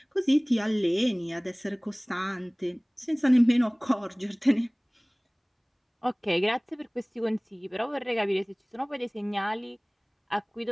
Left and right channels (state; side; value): identical; both; correlation 1.00